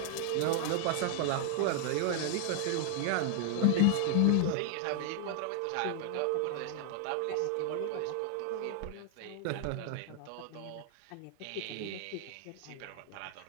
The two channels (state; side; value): different; both; correlation 0.00